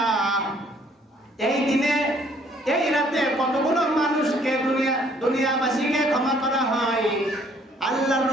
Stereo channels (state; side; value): normal; both; correlation 0.62